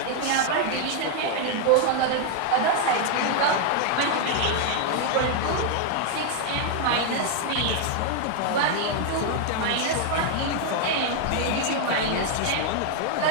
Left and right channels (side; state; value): both; different; correlation 0.00